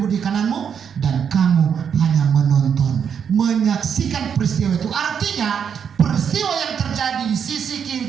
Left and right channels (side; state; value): left; quieter; 7.5 dB